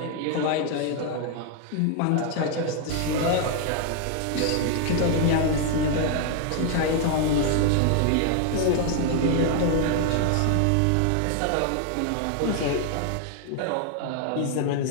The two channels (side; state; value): both; different; correlation 0.00